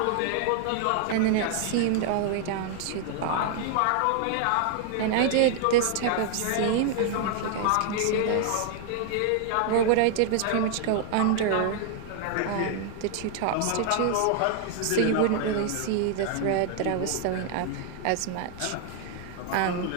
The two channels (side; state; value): both; different; correlation 0.00